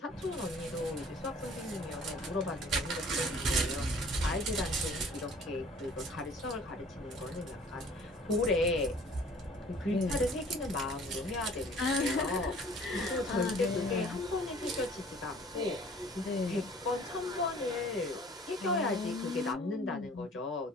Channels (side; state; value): both; normal; correlation 0.51